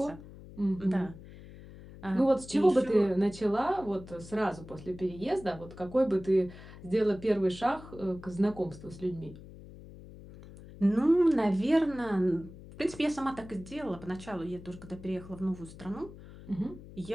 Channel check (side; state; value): left; noise; hum, 17 dB below the sound